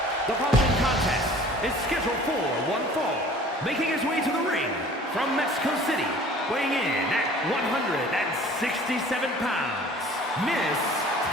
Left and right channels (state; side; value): normal; both; correlation 0.48